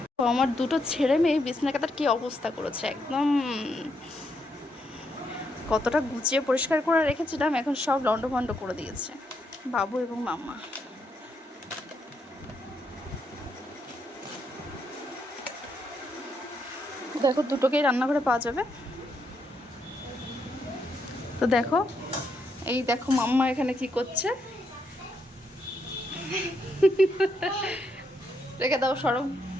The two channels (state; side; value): normal; both; correlation 0.78